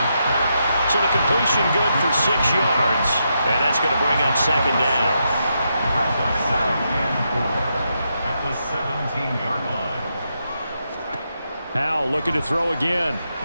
So the completion good for 6 yards. And that's going to bring up 2nd down. At the 17-yard line. Howell looking to throw again.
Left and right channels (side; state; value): both; inverted; correlation -0.82